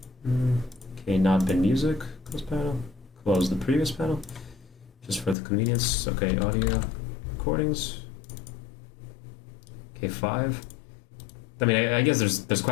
Okay, not bin music. Close panel. Close the previous panel, just for the convenience. Okay, audio recordings. Okay, 5. I mean, I guess there's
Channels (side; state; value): right; drops out; at 5.4 s